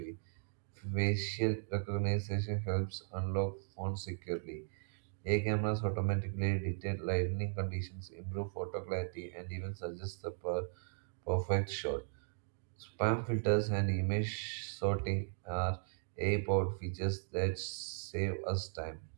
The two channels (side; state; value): left; silent; digital silence